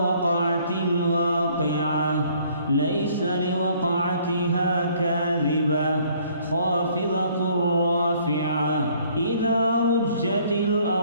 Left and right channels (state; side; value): inverted; both; correlation -0.61